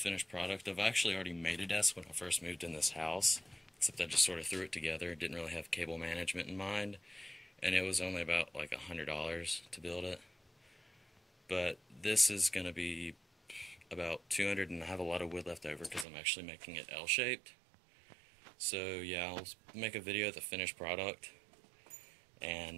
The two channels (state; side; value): drops out; left; at 16.1 s